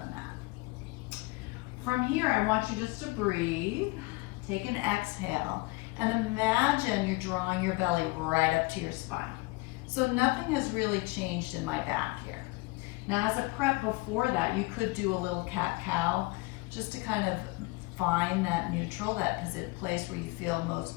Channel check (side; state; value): right; quieter; 24.6 dB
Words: mat. From here, I want you just to breathe. Take an exhale and imagine you're drawing your belly right up to your spine. So nothing has really changed in my back here. Now as a prep before that, you could do a little cat-cow just to kind of find that neutral, that place where you feel